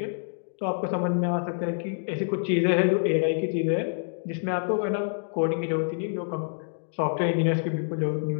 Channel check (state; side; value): silent; right; digital silence